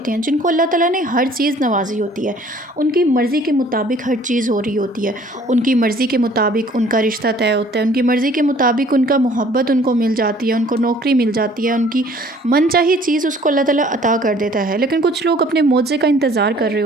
ہیں جن کو اللہ تعالیٰ نے ہر چیز نوازی ہوتی ہے، ان کی مرضی کے مطابق ہر چیز ہو رہی ہوتی ہے، ان کی مرضی کے مطابق ان کا رشتہ طے ہوتا ہے، ان کی مرضی کے مطابق ان کا محبت ان کو مل جاتی ہے، ان کو نوکری مل جاتی ہے، ان کی من چاہی چیز اس کو اللہ تعالیٰ عطا کر دیتا ہے، لیکن کچھ لوگ اپنے معجزے کا انتظار کر رہے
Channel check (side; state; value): both; normal; correlation 0.55